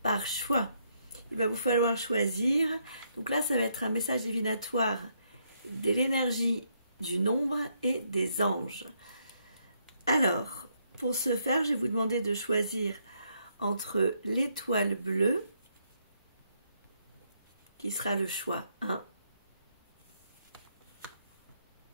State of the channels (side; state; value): both; inverted; correlation -0.75